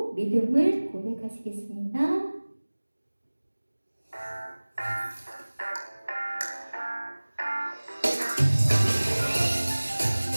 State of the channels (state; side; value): inverted; both; correlation -1.00